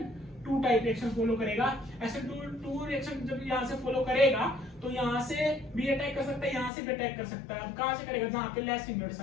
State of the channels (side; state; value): right; drops out; at 6.7 s